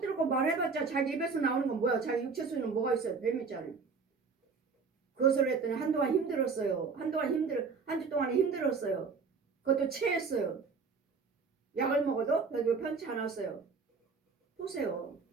들고 말해봤자 자기 입에서 나오는 건 뭐야? 자기 육체 속에는 뭐가 있어요? 뱀 있잖아요. 그것을 했더니 한동안 힘들었어요. 한 주 동안에 힘들었어요. 그것도 체했어요. 약을 먹어도 별로 편치 않았어요. 보세요.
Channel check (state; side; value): quieter; left; 5.0 dB